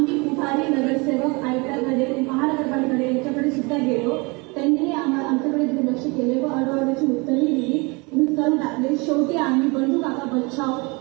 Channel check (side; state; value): left; quieter; 28.1 dB